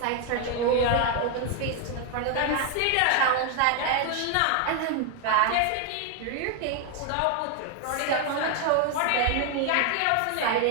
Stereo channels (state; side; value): different; both; correlation 0.00